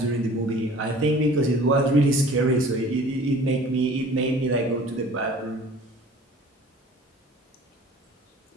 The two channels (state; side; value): normal; both; correlation 0.47